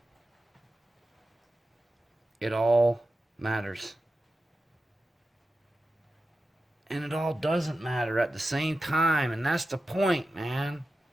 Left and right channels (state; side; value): normal; both; correlation 0.92